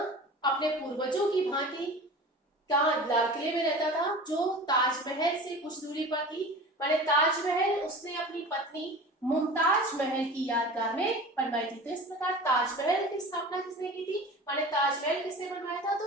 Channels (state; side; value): normal; both; correlation 0.36